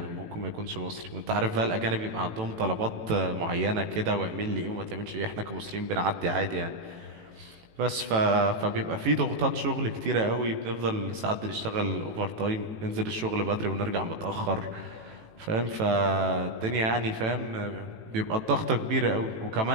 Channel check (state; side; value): late; left; 18 ms